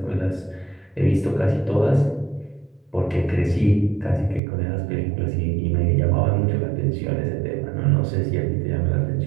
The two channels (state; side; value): drops out; left; at 4.4 s